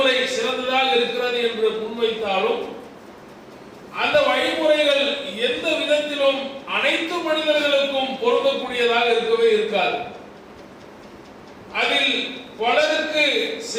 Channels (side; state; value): both; identical; correlation 1.00